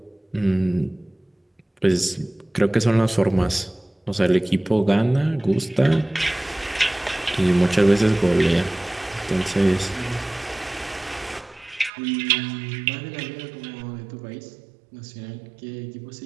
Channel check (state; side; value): drops out; left; at 11.9 s